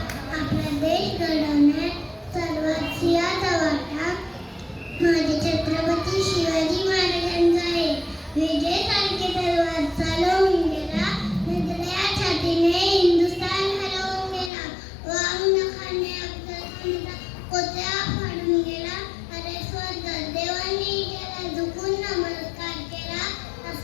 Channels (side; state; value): right; drops out; at 14.5 s